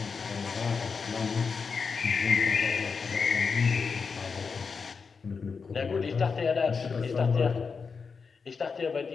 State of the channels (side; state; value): right; quieter; 5.3 dB